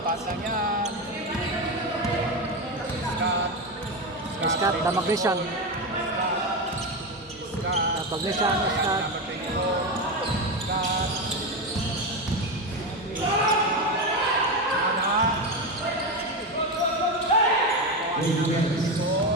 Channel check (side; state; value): both; normal; correlation 0.15